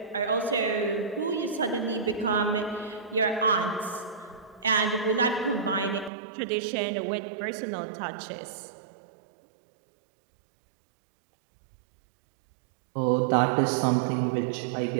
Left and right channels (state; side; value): drops out; left; at 6.1 s